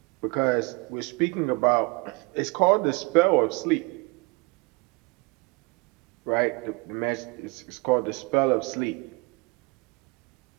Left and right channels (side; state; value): left; quieter; 26.9 dB